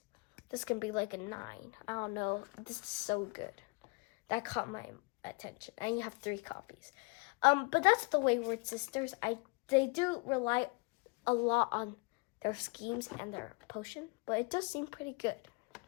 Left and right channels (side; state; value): right; quieter; 29.6 dB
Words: this can be like a 9. I don't know. This is so good. That caught my attention. And you have 3 copies. But that's the Wayward Sisters. They do rely a lot on their schemes and their potion, but it does seem pretty good.